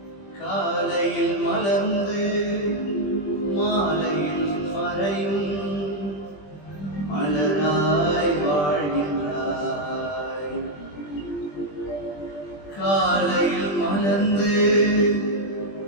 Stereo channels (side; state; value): right; late; 20 ms